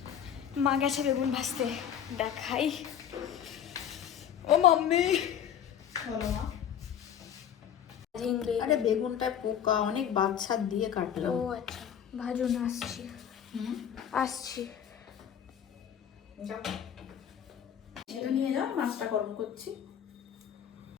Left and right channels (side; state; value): right; quieter; 9.1 dB